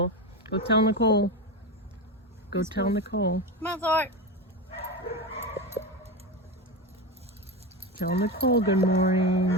Go tell Nicole. Go tell Nicole. Come on, Thor. Tell Nicole good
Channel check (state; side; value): normal; both; correlation 0.18